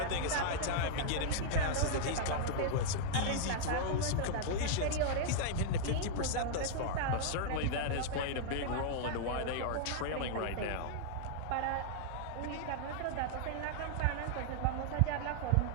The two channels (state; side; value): different; both; correlation -0.01